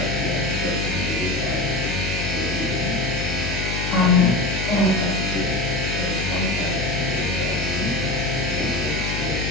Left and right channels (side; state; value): left; noise; hum, 4 dB below the sound